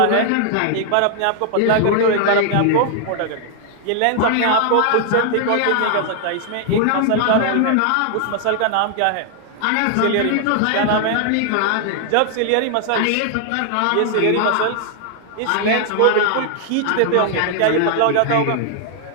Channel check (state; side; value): different; both; correlation 0.00